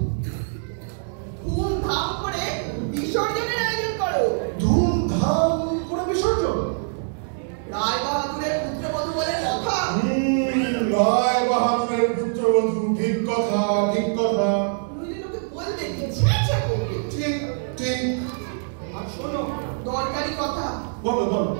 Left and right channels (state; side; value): silent; left; 63 dB below the other